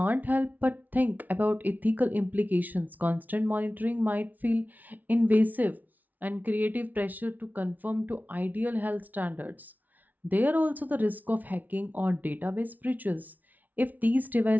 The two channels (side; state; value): left; late; 0.078 ms